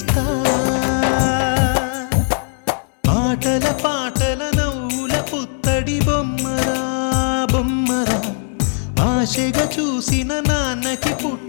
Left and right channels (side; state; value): right; silent; 67 dB below the other